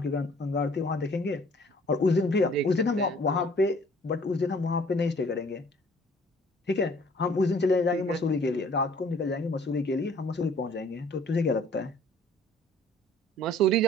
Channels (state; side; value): normal; both; correlation 0.55